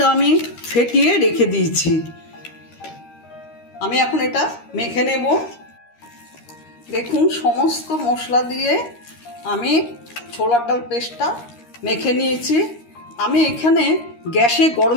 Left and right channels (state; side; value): late; right; 13 ms